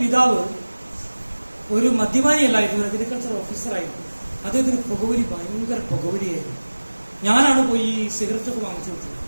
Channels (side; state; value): both; inverted; correlation -1.00